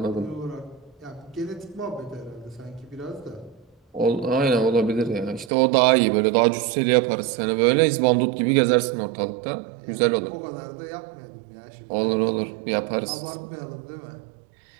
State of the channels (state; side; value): drops out; left; at 5.5 s